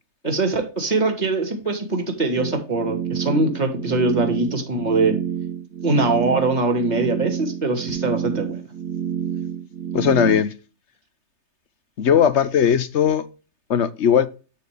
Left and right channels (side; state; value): right; late; 3.3 ms